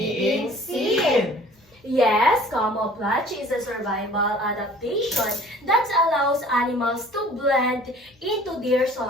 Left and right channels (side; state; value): both; normal; correlation 0.50